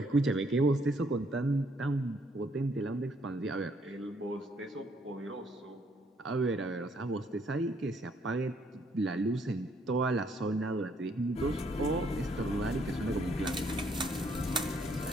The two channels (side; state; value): both; normal; correlation 0.68